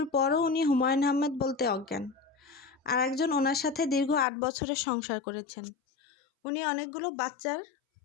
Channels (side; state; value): right; drops out; at 4.2 s